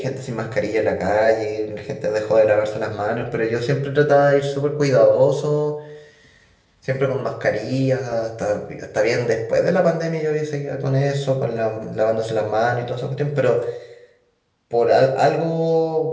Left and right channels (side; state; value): both; identical; correlation 1.00